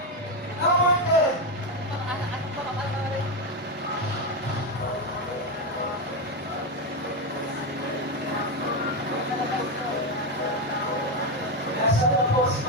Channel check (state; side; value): normal; both; correlation 0.09